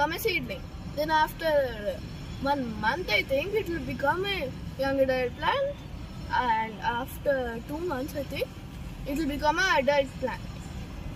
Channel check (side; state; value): both; identical; correlation 1.00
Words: a seedling. Then after 1 month, I think, it will become a young adult plant. And after 2 months, I think, it will become an adult plant.